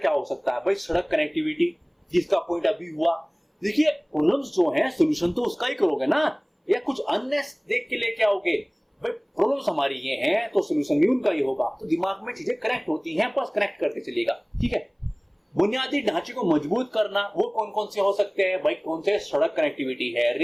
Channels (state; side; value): identical; both; correlation 1.00